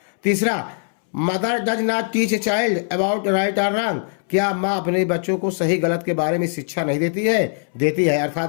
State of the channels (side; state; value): right; silent; 65 dB below the other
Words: तीसरा, mother does not teach a child about right और रॉन्ग, क्या माँ अपने बच्चों को सही गलत के बारे में शिक्षा नहीं देती है? देती है,